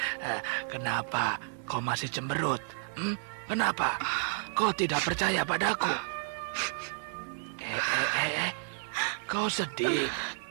Kenapa kau masih cemberut? Kenapa? Kau tidak percaya padaku? Kau sedih?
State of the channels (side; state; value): left; silent; 57 dB below the other